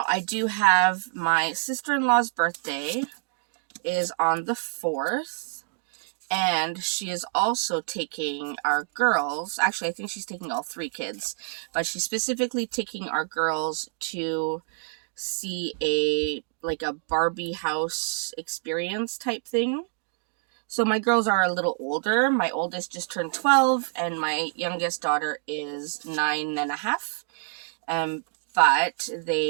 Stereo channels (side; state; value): left; silent; 55 dB below the other